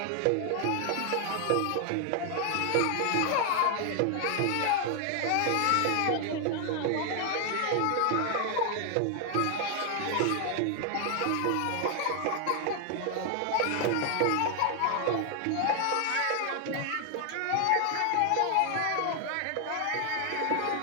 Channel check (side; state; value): both; different; correlation 0.00